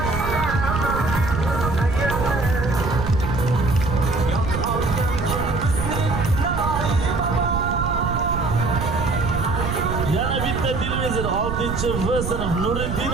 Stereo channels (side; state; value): right; noise; rumble, 3 dB below the sound